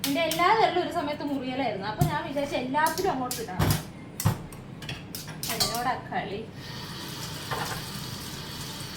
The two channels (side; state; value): both; identical; correlation 1.00